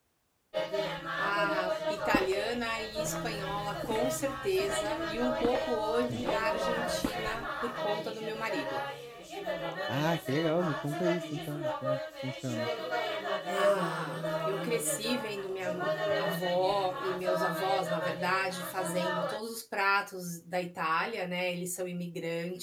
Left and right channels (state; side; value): identical; both; correlation 1.00